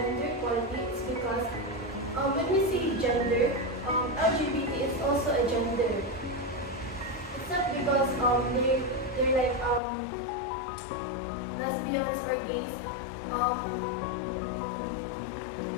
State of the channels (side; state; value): right; drops out; at 9.8 s